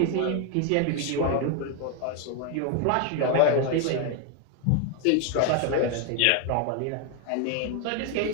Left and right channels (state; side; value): different; both; correlation 0.01